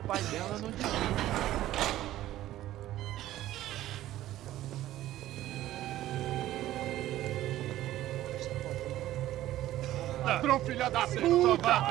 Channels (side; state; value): left; quieter; 14.3 dB